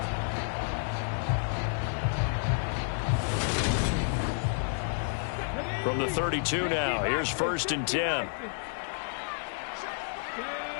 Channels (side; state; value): right; silent; 56 dB below the other